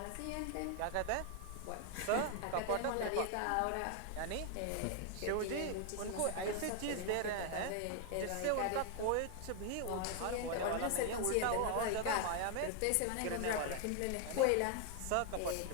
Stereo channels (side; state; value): both; different; correlation 0.00